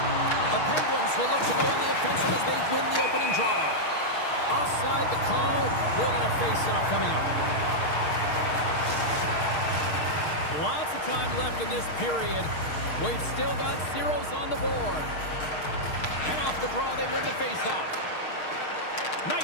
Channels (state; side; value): late; right; 6.5 ms